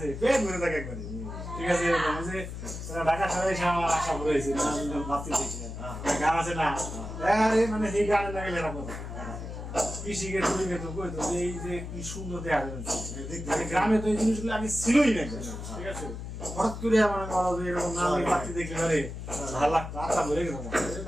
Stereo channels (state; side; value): noise; left; hum, 8 dB below the sound